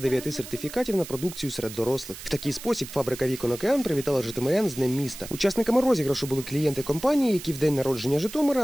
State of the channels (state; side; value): noise; right; hiss, 13 dB below the sound